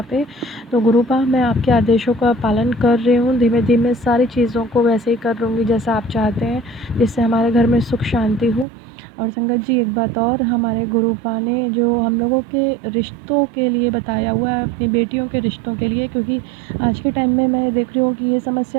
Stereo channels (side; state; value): left; drops out; at 8.7 s